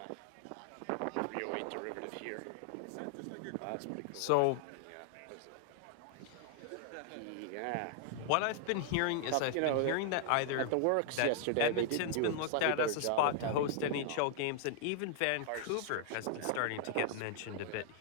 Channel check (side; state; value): both; different; correlation -0.01